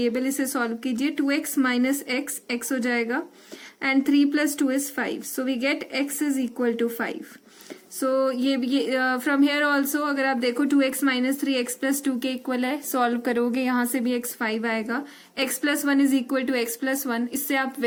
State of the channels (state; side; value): identical; both; correlation 1.00